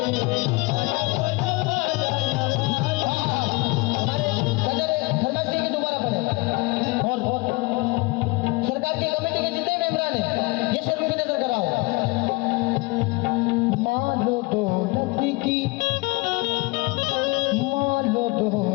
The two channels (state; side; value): quieter; right; 24.5 dB